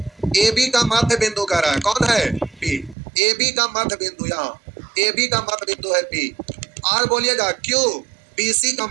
ए बी का मध्य बिंदु कह रहा है कौन है, पी, ए बी का मध्य बिंदु, यहाँ ए बी का मध्य बिंदु है पी। आर बोलिएगा क्यू बी सी का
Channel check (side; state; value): left; drops out; at 3.0 s